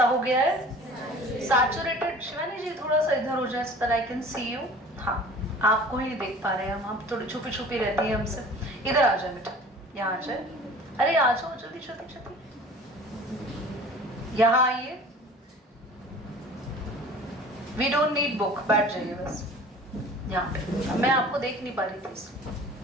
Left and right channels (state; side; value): normal; both; correlation 0.44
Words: हो गया है? सैचुरेटेड। शिवानी जी थोड़ा सा इधर हो जाए so that I can see you। हाँ, आपको ही नहीं देख पा रहे हैं हम थोड़ी छुपी छुपी रहती है हमसे। इधर आ जाए बेटा, यहाँ आ जाए, अरे आ जाओ जल्दी जल्दी जल्दी, यहाँ आइए। वी डोंट नीड बुक, बैठ जाइए बस यहाँ पे, मैं आपको देख नहीं पा रही थी।